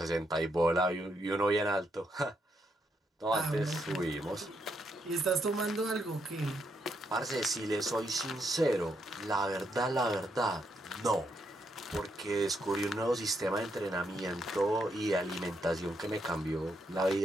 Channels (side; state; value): both; normal; correlation 0.78